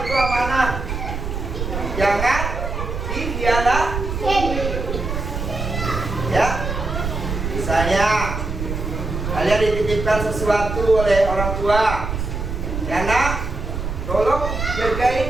itu amanah. Jangan dikhianati. Ya, misalnya kalian dititipkan sesuatu oleh orang tua, ya nak, tolong jagain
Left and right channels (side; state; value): right; noise; rumble, 4 dB below the sound